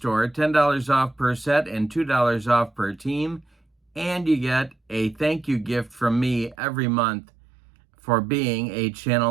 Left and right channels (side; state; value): left; drops out; at 6.6 s